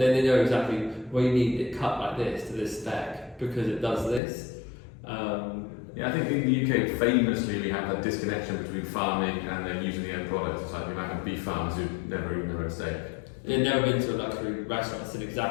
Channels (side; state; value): right; drops out; at 4.2 s